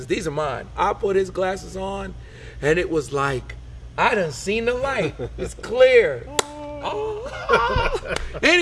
These are mine. I put his glasses on, and it was like, I done seen the light. It's clear.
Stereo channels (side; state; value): both; identical; correlation 1.00